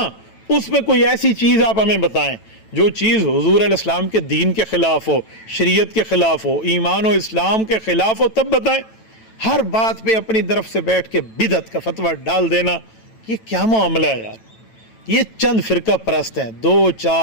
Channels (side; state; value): right; late; 9.1 ms